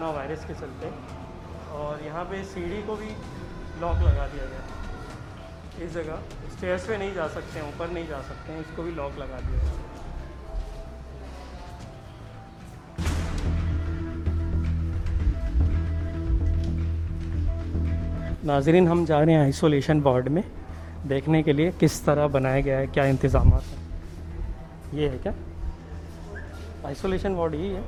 वायरस के चलते। और यहाँ पे सीढ़ी को भी लॉक लगा दिया गया है। इस जगह स्टेयर्स पे नहीं जा सकते हैं, ऊपर नहीं जा सकते हैं, इसको भी लॉक लगा दिया गया है। नाजरीन, हम जा रहे हैं आइसोलेशन वार्ड में देखने के लिए किस तरह बनाया गया है, क्या इंतज़ाम हैं। ये है क्या आइसोलेशन वार्ड? यही है,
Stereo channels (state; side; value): identical; both; correlation 1.00